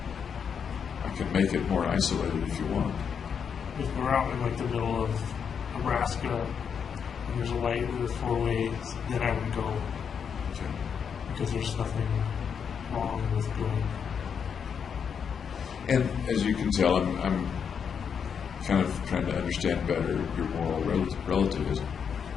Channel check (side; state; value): right; quieter; 7.0 dB